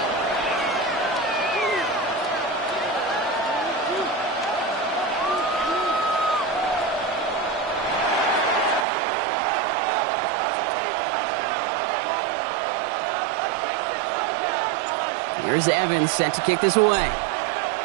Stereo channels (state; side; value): drops out; left; at 8.8 s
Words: Here's Evans set to kick this away.